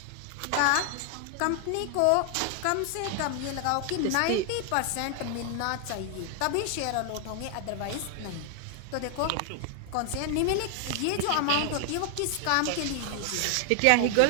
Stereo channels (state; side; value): different; both; correlation 0.00